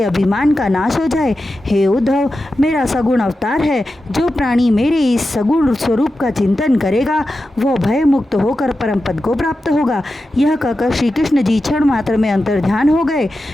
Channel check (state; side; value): normal; both; correlation 0.91